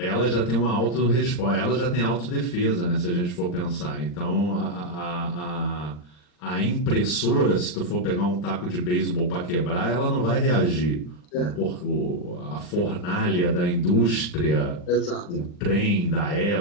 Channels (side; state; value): right; late; 40 ms